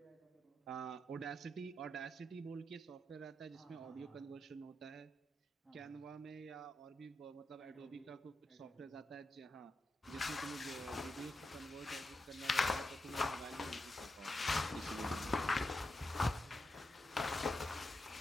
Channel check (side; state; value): both; normal; correlation 0.87